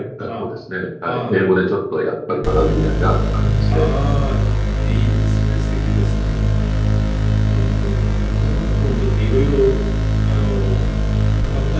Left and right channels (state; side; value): identical; both; correlation 1.00